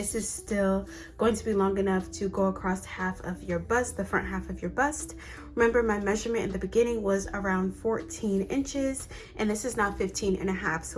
is still going to be long enough to go across half of your bust, the front half of your bust. Remember, my measurement in the beginning was around 14 inches, and this is now 15.5.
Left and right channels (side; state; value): both; identical; correlation 1.00